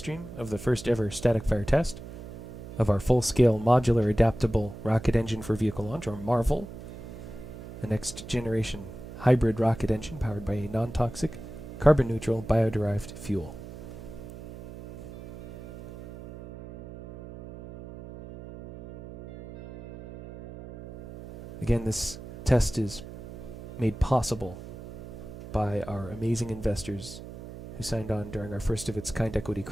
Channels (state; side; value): noise; right; hum, 12 dB below the sound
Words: of the first ever static fire test of our full-scale Modular Adaptable Rocket Engine for Vehicle Launch, or MAREVL, the next generation hybrid rocket engine powered by a non-toxic, carbon-neutral, bio-derived fuel. Again, this test is made possible by our amazing investors who signed on during our first-of-its-kind equity